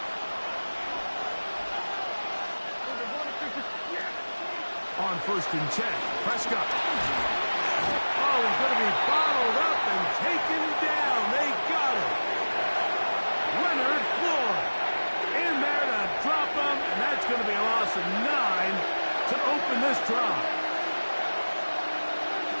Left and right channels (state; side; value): inverted; both; correlation -1.00